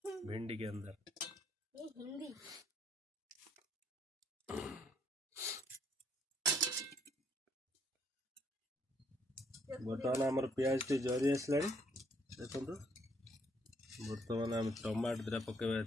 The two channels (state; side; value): normal; both; correlation 0.68